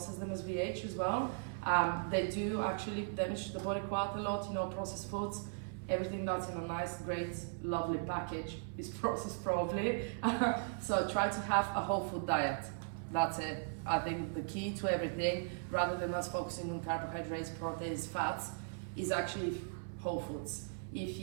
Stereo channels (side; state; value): left; silent; 52 dB below the other